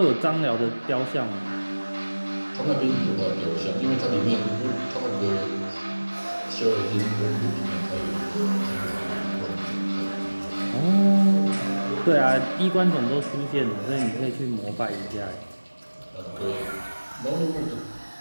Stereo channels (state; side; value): inverted; both; correlation -1.00